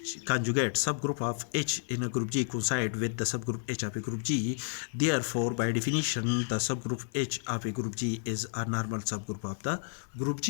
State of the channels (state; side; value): silent; right; 57 dB below the other